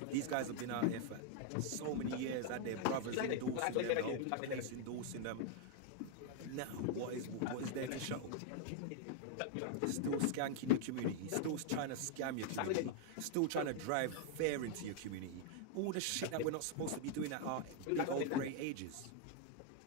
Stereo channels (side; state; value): both; different; correlation 0.00